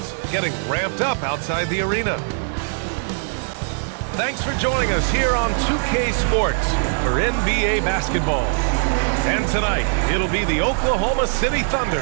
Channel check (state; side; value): silent; left; 65 dB below the other